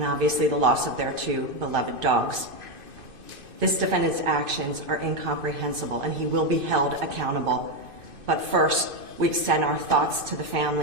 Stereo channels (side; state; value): left; late; 2.5 ms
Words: obviously the loss of their two beloved dogs. This defendant's actions are incomprehensible, and he will be held accountable. But first, we extend our thoughts to the